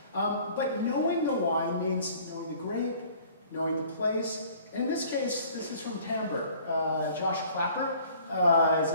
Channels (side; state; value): both; inverted; correlation -0.52